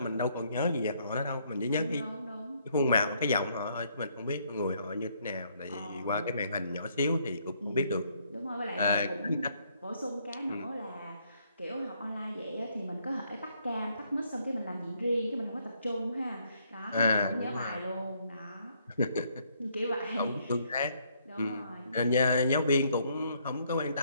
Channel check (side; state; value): both; inverted; correlation -0.70